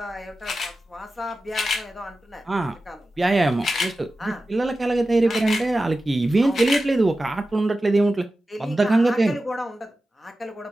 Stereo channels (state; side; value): normal; both; correlation 0.94